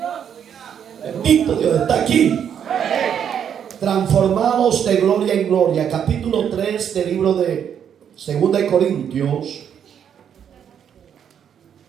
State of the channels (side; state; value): left; quieter; 8.5 dB